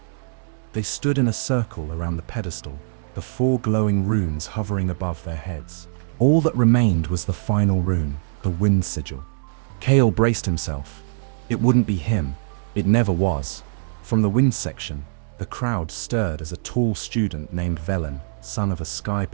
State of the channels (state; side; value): silent; left; digital silence